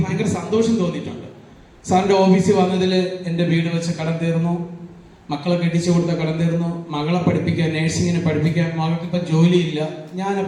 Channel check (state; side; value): identical; both; correlation 1.00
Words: ഭയങ്കര സന്തോഷം തോന്നിയിട്ടുണ്ട്. സാറിൻ്റെ ഓഫീസിൽ വന്നതിൽ എൻ്റെ വീട് വെച്ച് കടം തീർന്നു, മക്കളെ കെട്ടിച്ചു കൊടുത്ത കടം തീർന്നു, മകളെ പഠിപ്പിക്കാൻ, നേഴ്സിങ്ങിനെ പഠിപ്പിക്കാൻ, മകൾക്ക് ഇപ്പം ജോലിയില്ല.